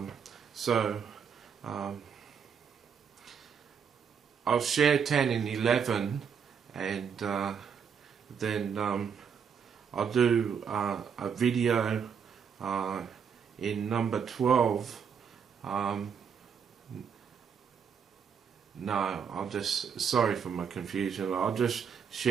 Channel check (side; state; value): left; quieter; 7.0 dB